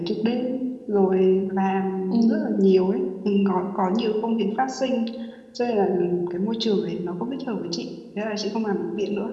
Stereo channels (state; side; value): identical; both; correlation 1.00